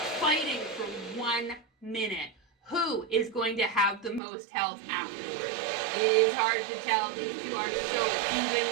fighting for 1 minute. Who is going to have the most health afterwards? It is hard to tell. These two are so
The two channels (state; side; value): drops out; left; at 4.2 s